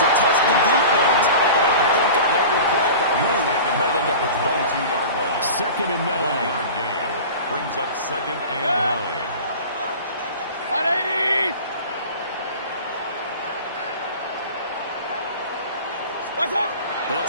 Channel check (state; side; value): inverted; both; correlation -0.37